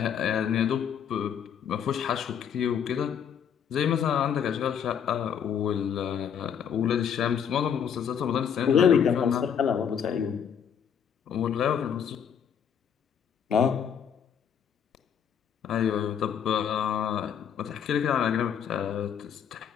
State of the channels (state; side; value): quieter; right; 8.2 dB